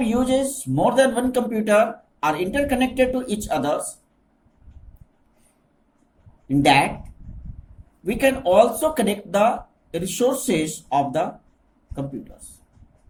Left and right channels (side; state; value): both; identical; correlation 1.00